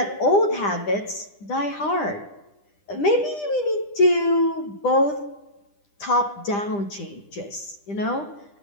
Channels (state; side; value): late; right; 10 ms